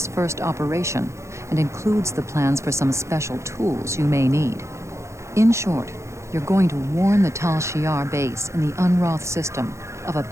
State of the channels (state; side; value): late; left; 0.14 ms